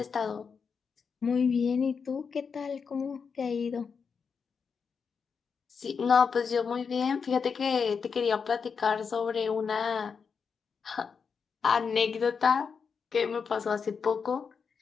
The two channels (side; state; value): right; quieter; 5.9 dB